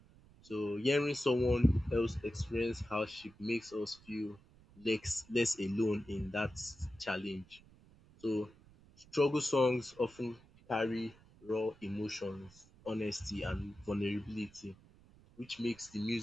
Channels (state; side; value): noise; right; rumble, 25 dB below the sound